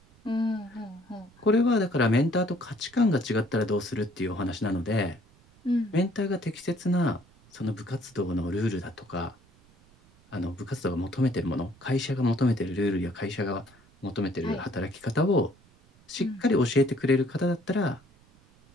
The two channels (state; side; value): noise; right; rumble, 29 dB below the sound